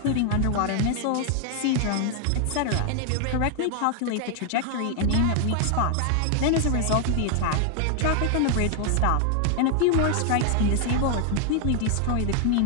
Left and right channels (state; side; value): different; both; correlation 0.00